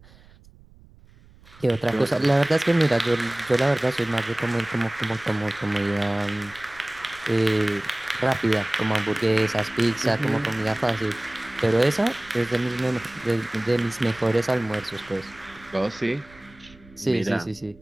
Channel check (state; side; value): noise; right; rumble, 25 dB below the sound